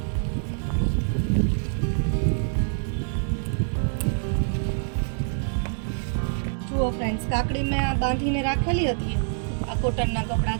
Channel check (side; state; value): left; silent; digital silence